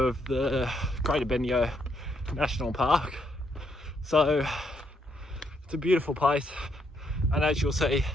the Greater Bendigo National Park. So it's a beautiful place, and as you'll see,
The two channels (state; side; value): normal; both; correlation 0.75